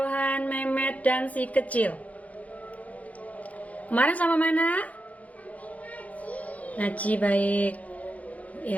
Mehmet, dan si kecil. Kemarin sama mana? Ngaji, baik.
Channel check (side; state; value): right; late; 0.070 ms